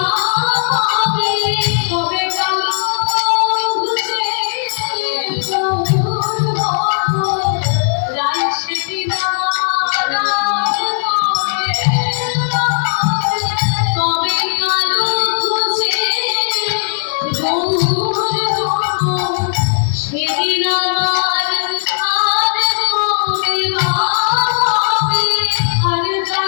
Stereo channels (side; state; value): right; silent; 69 dB below the other